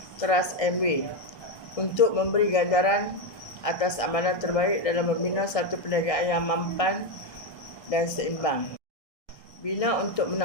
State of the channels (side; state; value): right; late; 1.6 ms